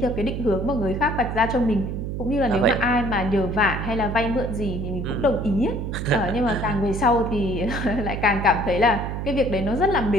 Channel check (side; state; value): right; noise; hum, 4 dB below the sound